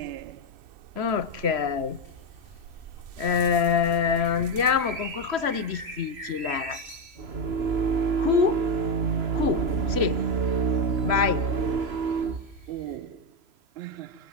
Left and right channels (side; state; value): left; late; 3.0 ms